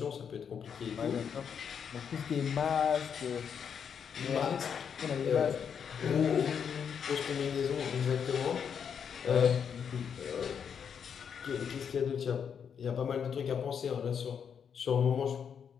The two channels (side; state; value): right; quieter; 7.4 dB